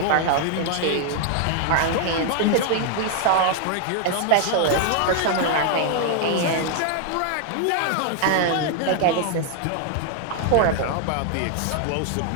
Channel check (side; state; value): both; different; correlation 0.00